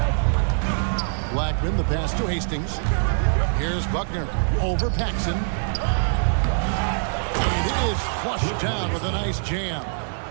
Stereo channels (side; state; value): left; silent; digital silence